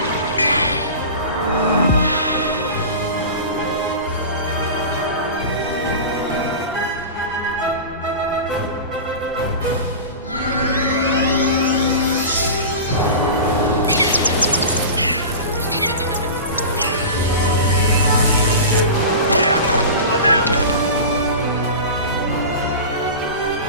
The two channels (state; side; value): inverted; both; correlation -0.30